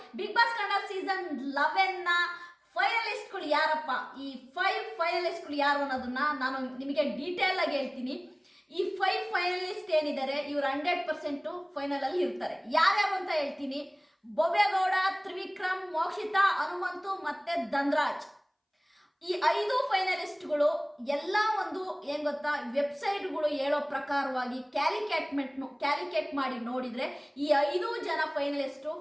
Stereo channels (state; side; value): identical; both; correlation 1.00